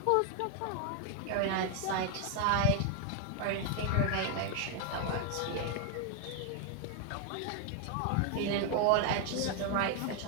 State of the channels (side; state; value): both; different; correlation 0.00